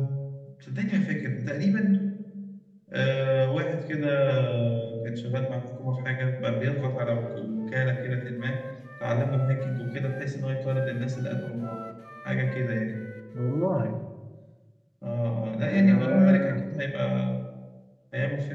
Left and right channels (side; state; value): both; identical; correlation 1.00